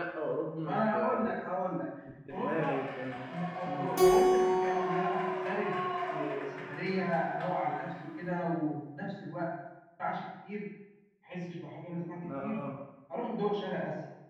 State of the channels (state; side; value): identical; both; correlation 1.00